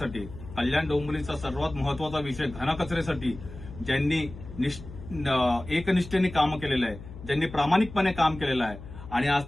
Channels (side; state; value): left; noise; hum, 14 dB below the sound